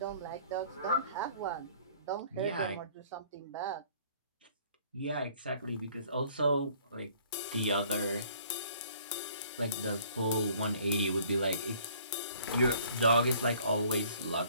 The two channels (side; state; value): both; inverted; correlation -0.56